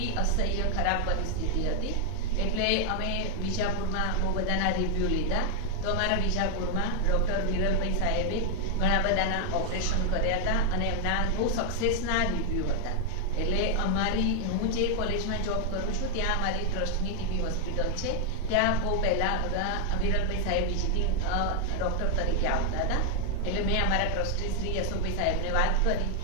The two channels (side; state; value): both; different; correlation 0.00